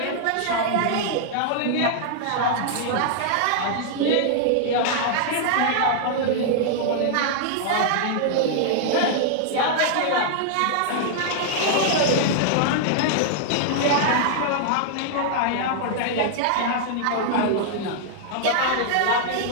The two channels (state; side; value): different; both; correlation -0.01